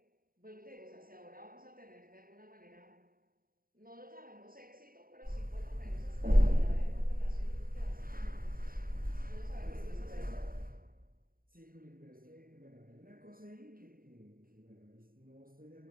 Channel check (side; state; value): left; late; 0.42 ms